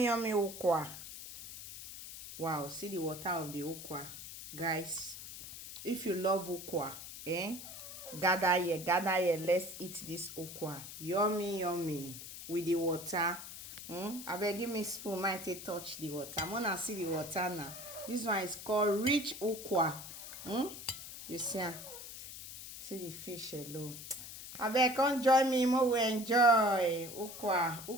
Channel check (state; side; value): noise; left; hiss, 11 dB below the sound